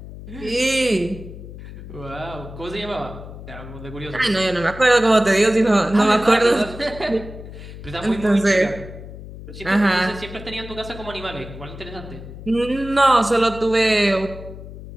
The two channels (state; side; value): noise; left; hum, 13 dB below the sound